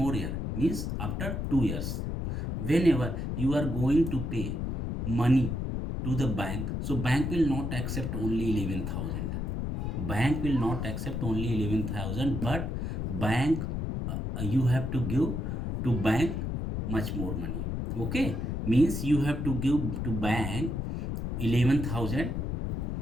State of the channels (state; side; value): noise; left; rumble, 2 dB below the sound